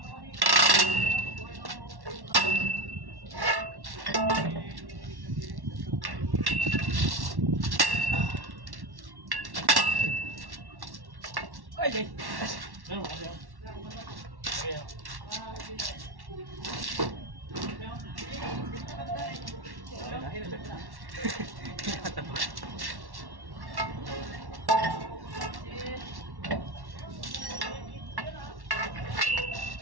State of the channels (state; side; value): late; left; 1.1 ms